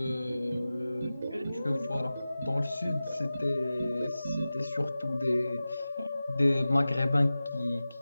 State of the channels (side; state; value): both; inverted; correlation -0.96